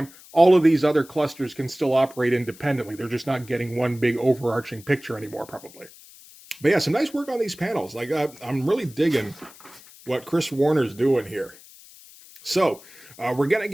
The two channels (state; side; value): noise; left; hiss, 22 dB below the sound